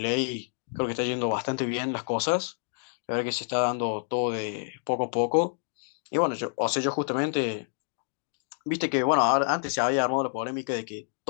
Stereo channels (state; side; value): silent; right; digital silence